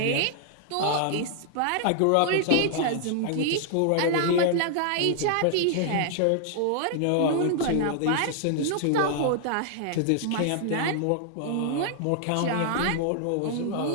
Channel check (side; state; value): both; different; correlation -0.01